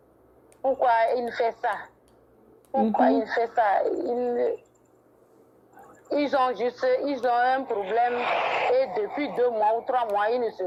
pourquoi il fait ça? Pourquoi Mhm. il fait ça? Ils ont un problème et depuis 2 mois ou 3 mois, ils ne se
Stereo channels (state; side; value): identical; both; correlation 1.00